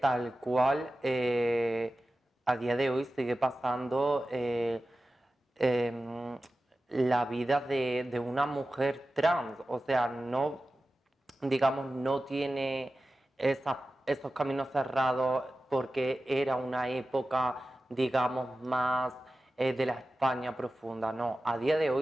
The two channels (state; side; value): normal; both; correlation 0.94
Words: cual a día de hoy sigue pasando la vida de una mujer trans. O sea, no, digamos, no tiene esos caminos cerrados porque era una época, digamos, más de la España profunda. No, a día de